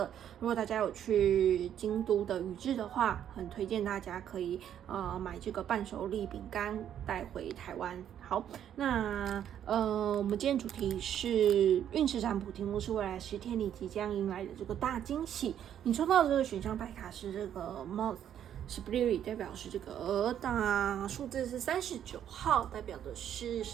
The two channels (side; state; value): left; quieter; 9.9 dB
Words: 如果大家有去京都的宇治的话，很推荐大家可以买这个伴手礼饼干带回台湾。好，那我们今天主题是运势占卜，题目是未来10天你即将迎来的这个大惊喜。你抽到的这个选项牌卡是这个 Moth Spirit， 代表是这个鹅，那数字是39号，代表的是